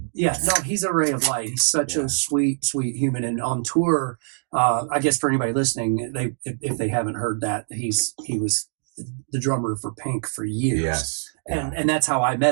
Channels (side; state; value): left; silent; digital silence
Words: Yeah, no, he's a ray of light. He's such a sweet human. And on tour, I guess for anybody listening, if they haven't heard that, he was the drummer for Pink for years. Yes. And that's how I